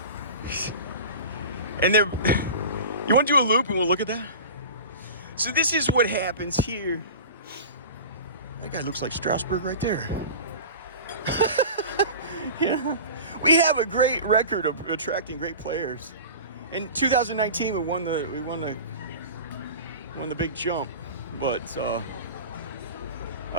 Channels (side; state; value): both; inverted; correlation -0.34